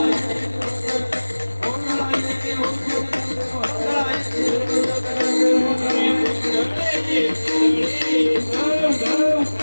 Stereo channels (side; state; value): both; inverted; correlation -1.00